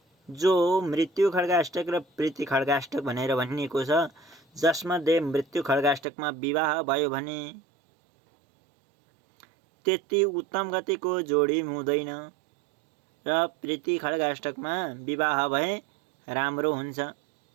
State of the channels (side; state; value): left; drops out; at 6.0 s